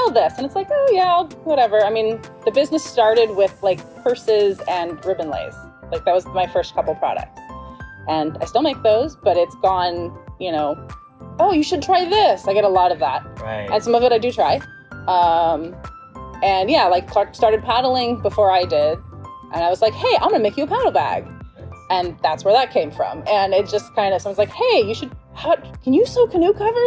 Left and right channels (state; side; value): identical; both; correlation 1.00